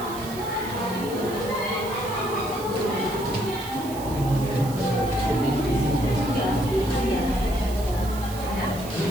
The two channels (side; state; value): right; noise; hiss, 14 dB below the sound